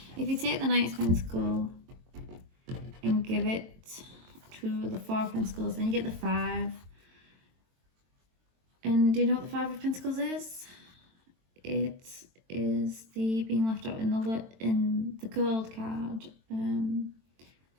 If you take the Knight's pentacle and give it to the Four of Pentacles, then you get the 5. And do you know what the 5 of Pentacles is? It is the being left out in the gold card.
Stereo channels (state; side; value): late; left; 22 ms